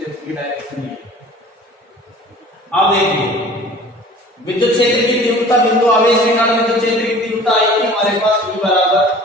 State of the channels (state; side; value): normal; both; correlation 0.45